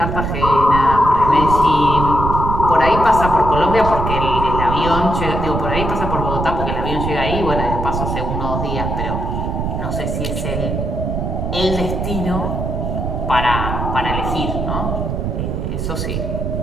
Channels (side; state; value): right; noise; rumble, 2 dB below the sound